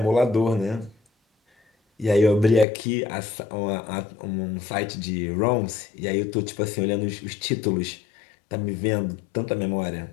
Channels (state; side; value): drops out; right; at 2.7 s